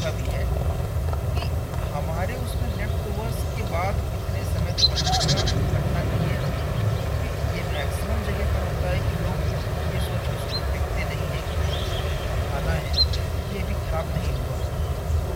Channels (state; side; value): identical; both; correlation 1.00